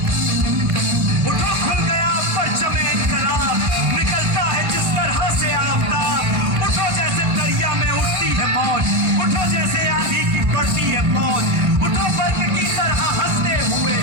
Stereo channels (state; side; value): late; left; 1.5 ms